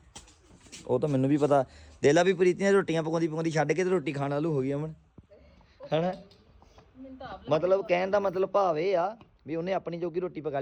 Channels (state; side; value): identical; both; correlation 1.00